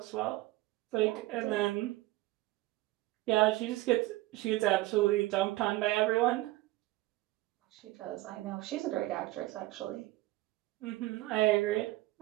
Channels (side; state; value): left; quieter; 18.8 dB